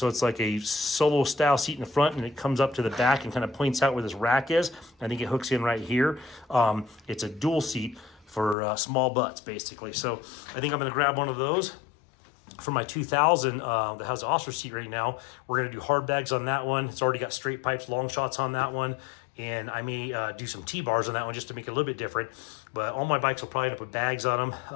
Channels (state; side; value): drops out; right; at 8.6 s